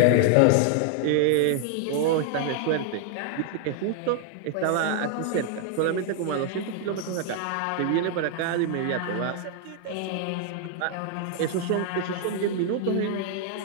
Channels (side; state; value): both; different; correlation 0.00